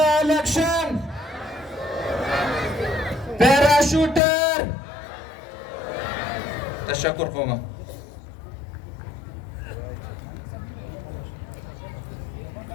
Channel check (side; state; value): right; drops out; at 4.2 s